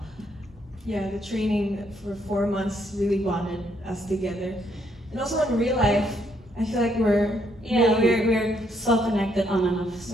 Yeah, the training for 4 months really bonded us together. And also in real life, I feel like we're so connected on and off like,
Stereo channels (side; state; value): both; normal; correlation 0.72